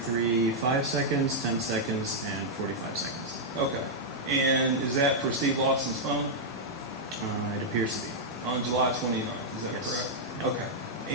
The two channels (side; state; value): both; normal; correlation -0.05